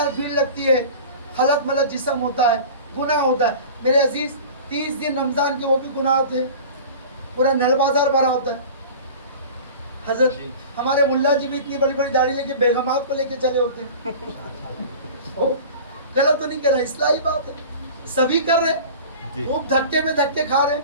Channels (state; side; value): inverted; both; correlation -0.38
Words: بھیڑ لگتی ہے, خلط ملط جسم ہوتا ہے, گناہ ہوتا ہے. میرے عزیز 30 دن رمضان کے وہ بھی گناہ ہوتے ہیں, پورا نل بازار بھرا ہوتا ہے. حضرت ہمارے ملا جی بھی اتنی بڑی بڑی داڑھی لے کے بیگمات کو لے کے چلے ہوتے ہیں. غلط تو نہیں کر رہا, اصلاحی بات ہے. سبھی کر رہے, جی خوب دھکے میں دھکے کھا رہے,